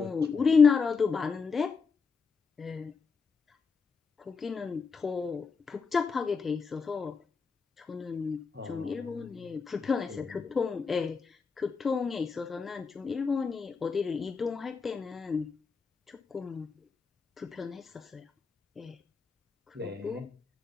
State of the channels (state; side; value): quieter; right; 5.3 dB